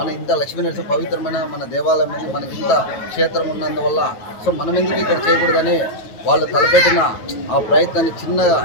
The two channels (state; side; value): late; right; 9.2 ms